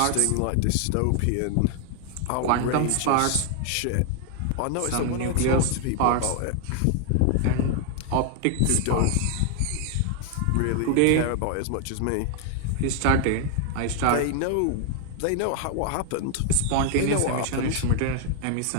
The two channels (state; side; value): different; both; correlation 0.00